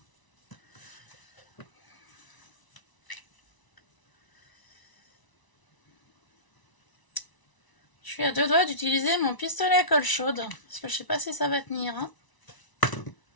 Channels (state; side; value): late; right; 1.0 ms